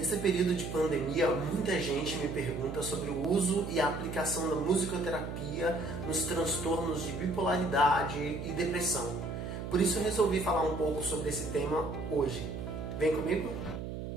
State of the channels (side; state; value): right; noise; hum, 6 dB below the sound